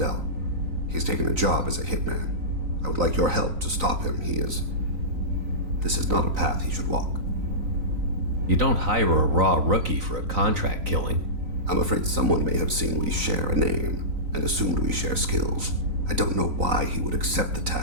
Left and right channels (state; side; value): late; left; 3.9 ms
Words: He's taken a job as a hitman. I would like your help to stop him. This is not a path he should walk. You don't hire a raw rookie for a contract killing. I'm afraid someone may have seen we share a name and assumed we share skills. I don't know why he would accept the